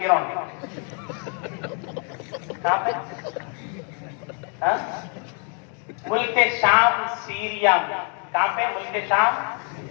گراؤنڈ. کہاں پہ؟ ملک شام سیریا میں. کہاں پہ؟ ملک شام.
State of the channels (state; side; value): quieter; right; 39.5 dB